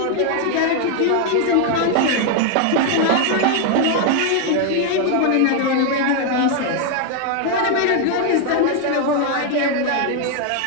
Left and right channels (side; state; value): both; different; correlation 0.00